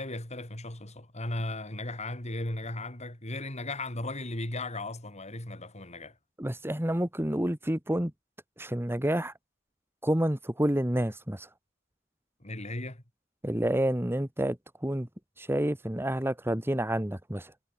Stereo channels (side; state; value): both; normal; correlation 0.86